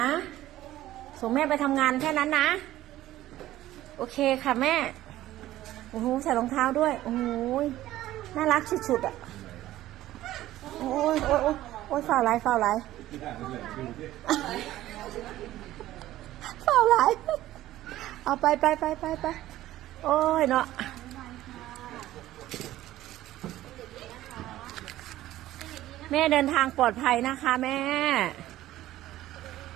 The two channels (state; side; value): quieter; left; 14.7 dB